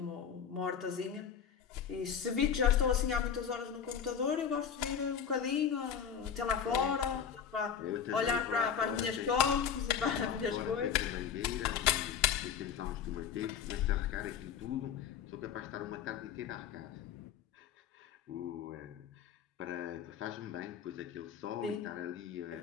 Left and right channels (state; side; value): quieter; right; 7.8 dB